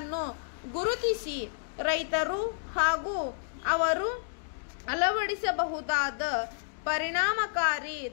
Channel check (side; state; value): right; silent; digital silence